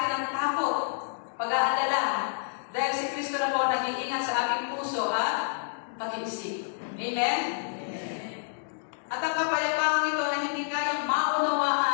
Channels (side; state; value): right; silent; digital silence